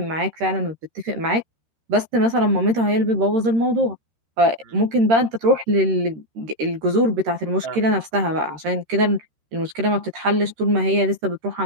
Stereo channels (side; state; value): left; late; 13 ms